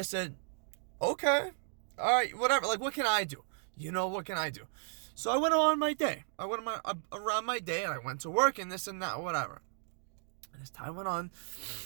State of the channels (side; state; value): left; silent; 55 dB below the other